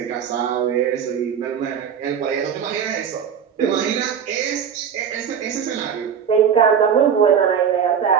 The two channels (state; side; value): quieter; left; 7.7 dB